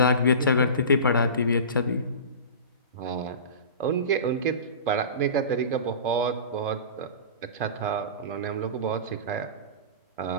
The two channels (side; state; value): both; inverted; correlation -0.33